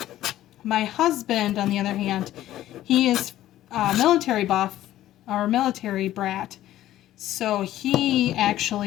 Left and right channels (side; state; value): right; quieter; 13.7 dB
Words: my husband, on the other hand, he is military buff or military brat. So he